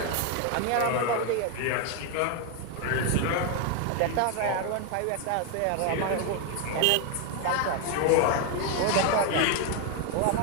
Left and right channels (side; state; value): both; different; correlation 0.01